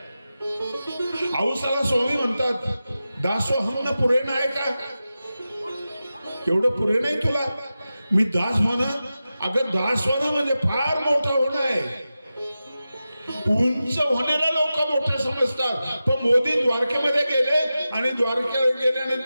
औसाला स्वामी म्हणतात, दासोहम पुरे नाही का, एवढं पुरे नाही तुला, मी दास होणं. अगं दास होणं म्हणजे फार मोठं होणं आहे. उंच होण्याला लोक मोठे समजतात, पण मोदी द्वारकेमध्ये गेले आणि द्वारकेला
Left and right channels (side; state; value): both; inverted; correlation -0.93